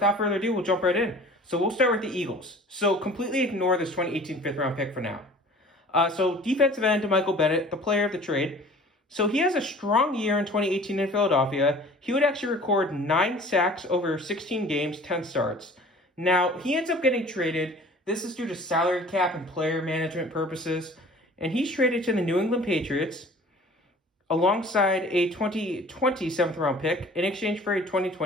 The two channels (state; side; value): normal; both; correlation 0.47